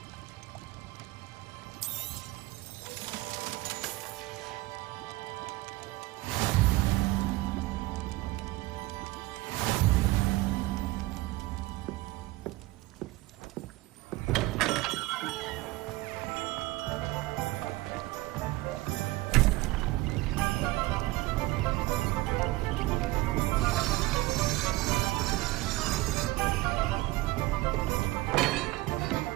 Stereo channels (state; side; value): quieter; left; 19.5 dB